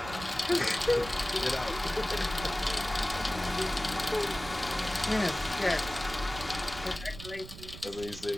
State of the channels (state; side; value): noise; right; rumble, 13 dB below the sound